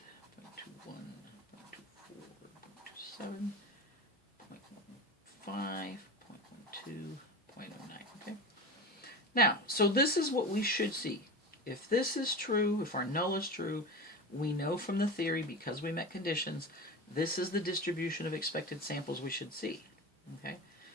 0.24, 0.27, 0.15, 0.12, 0.09. Okay. Now, so this is what we should see. If this is true, if our null is true, we know from the theory, because we met conditions, this is the distribution of expected samples we should see. Okay.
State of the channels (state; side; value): normal; both; correlation 0.27